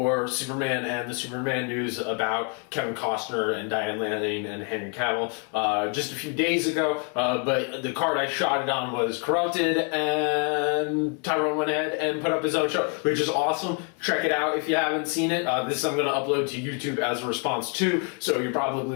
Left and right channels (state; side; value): quieter; right; 38.0 dB